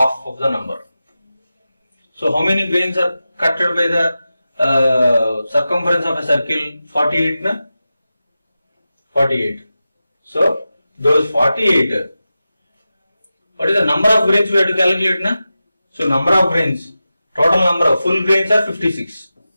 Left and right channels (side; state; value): both; inverted; correlation -0.93